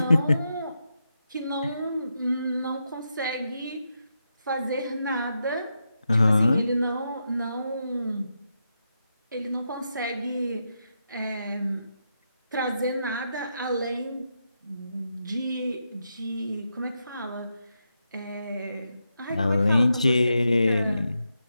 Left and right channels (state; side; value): inverted; both; correlation -0.85